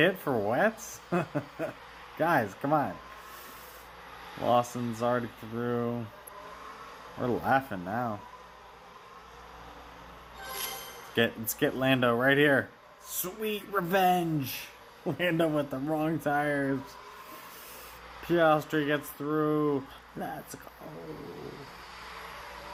for wets? Guys, come on. Lawson's already through. We're laughing now. Let's get Lando right here. Sweet revenge. Lando with the wrong tires. Piastri gets through. Let's go.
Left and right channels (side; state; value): both; identical; correlation 1.00